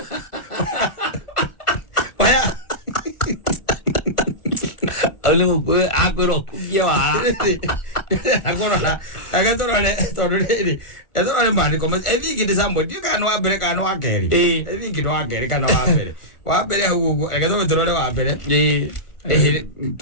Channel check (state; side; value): late; right; 1.4 ms